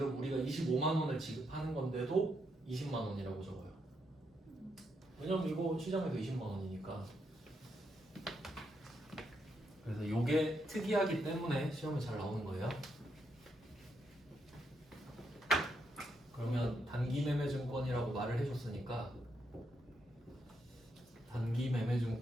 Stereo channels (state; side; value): normal; both; correlation 0.79